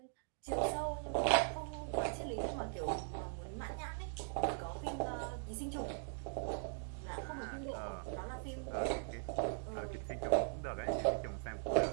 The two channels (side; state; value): left; silent; digital silence